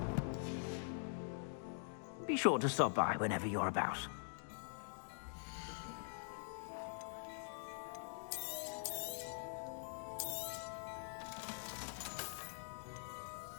Be sure to stop by whenever you're about.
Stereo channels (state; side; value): silent; right; digital silence